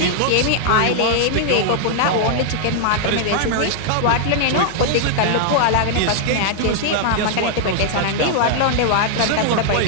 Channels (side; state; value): both; different; correlation 0.00